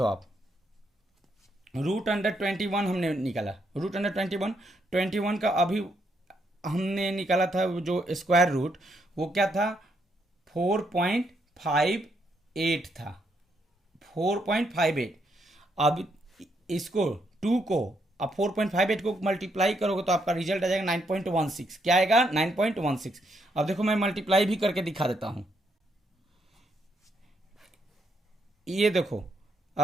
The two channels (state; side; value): normal; both; correlation 0.76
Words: आप। रूट अंडर 21 हमने निकाला। रूट अंडर 21 का अभी हमने निकाला था जो स्क्वायर रूट वो क्या था 4.58 था 4.58। अब इसको 2 को अब 4.58 को मल्टीप्लाई करोगे तो आपका रिजल्ट आ जाएगा 9.16। क्या आएगा 9.16। अब देखो मैं मल्टीप्लाई भी करके दिखा देता हूं। ये देखो